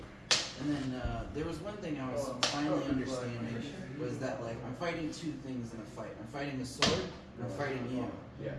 And then there was one thing I was finally understanding was that like I'm fighting two things in a fight. I'm fighting a sword and I'm fighting you. Yeah.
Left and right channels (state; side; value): identical; both; correlation 1.00